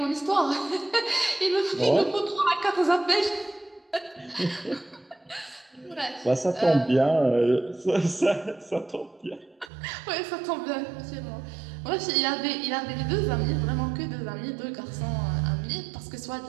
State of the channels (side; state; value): left; drops out; at 9.7 s